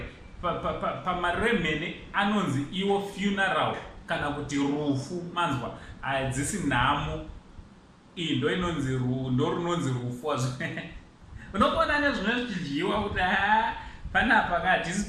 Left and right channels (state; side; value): identical; both; correlation 1.00